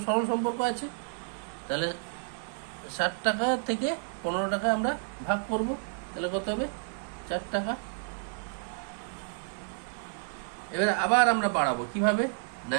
সরল সম্পর্ক আছে। তাহলে 60 টাকা থেকে 15 টাকা আমরা ভাগ করব, তাহলে কত হবে, 4 টাকা। এবারে আবার আমরা বাড়াবো কিভাবে, না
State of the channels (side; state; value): left; silent; 57 dB below the other